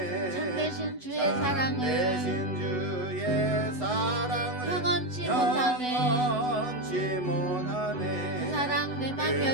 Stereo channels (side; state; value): right; late; 8.0 ms